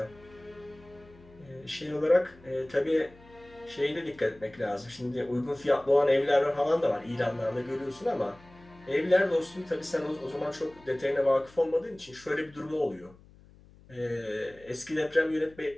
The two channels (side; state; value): left; noise; hum, 24 dB below the sound